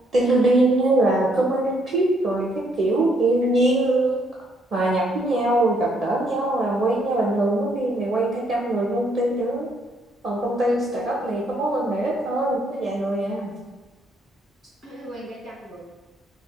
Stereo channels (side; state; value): both; normal; correlation 0.70